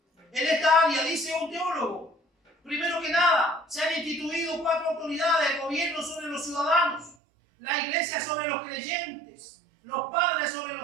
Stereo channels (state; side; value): drops out; left; at 7.2 s